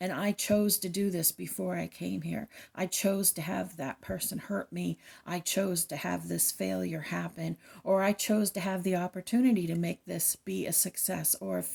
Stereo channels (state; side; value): identical; both; correlation 1.00